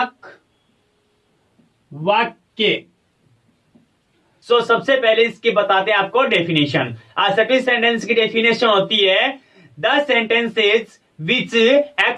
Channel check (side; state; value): both; identical; correlation 1.00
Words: वाक्य। सो सबसे पहले इसकी बताते हैं आपको डेफिनेशन। असर्टिव सेंटेंस की डेफिनेशन होती है the sentences which